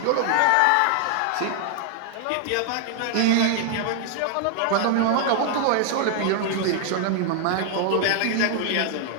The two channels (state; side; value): different; both; correlation 0.00